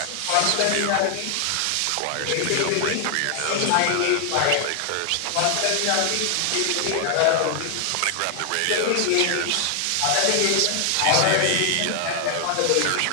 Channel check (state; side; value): different; both; correlation 0.00